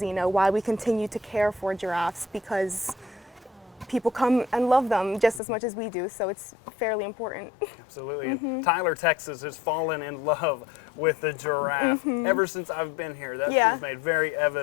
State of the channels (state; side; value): drops out; right; at 5.4 s